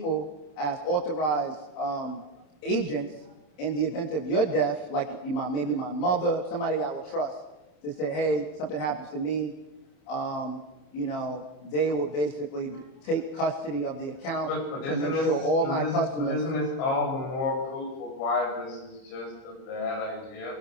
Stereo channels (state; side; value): late; right; 31 ms